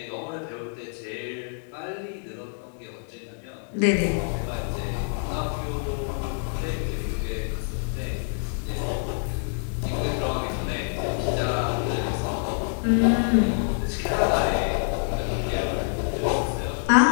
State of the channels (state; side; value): silent; right; 56 dB below the other